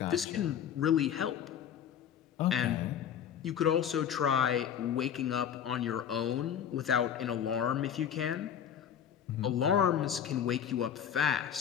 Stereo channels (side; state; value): right; quieter; 8.9 dB